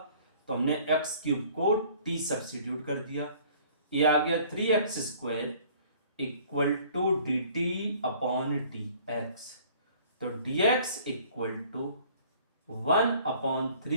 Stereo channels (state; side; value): inverted; both; correlation -0.53